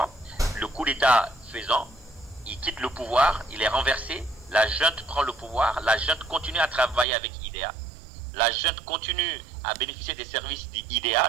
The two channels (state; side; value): drops out; left; at 7.1 s